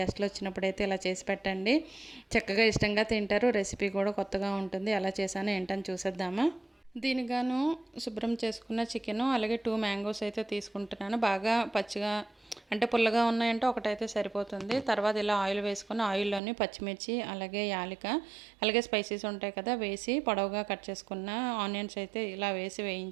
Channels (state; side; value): drops out; left; at 16.4 s